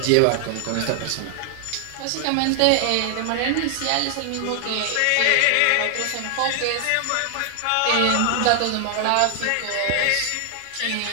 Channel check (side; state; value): both; different; correlation 0.00